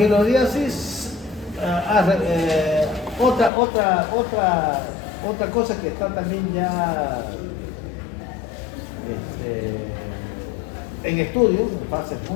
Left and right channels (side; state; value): right; drops out; at 3.5 s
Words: otra cosa que está también ya en estudio, en fase